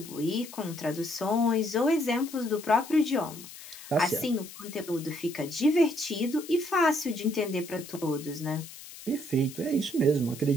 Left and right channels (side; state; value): left; noise; hiss, 15 dB below the sound